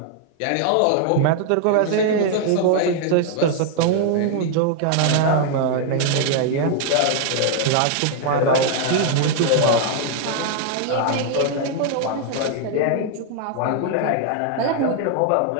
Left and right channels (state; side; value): different; both; correlation 0.00